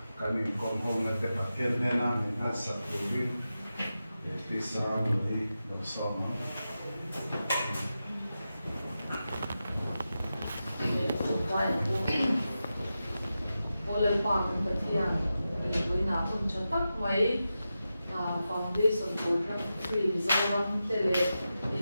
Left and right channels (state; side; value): inverted; both; correlation -0.91